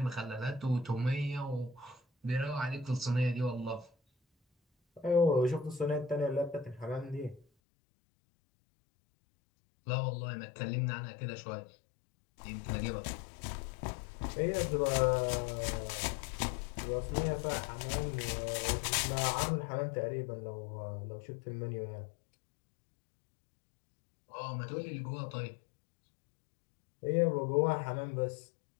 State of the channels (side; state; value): right; drops out; at 7.5 s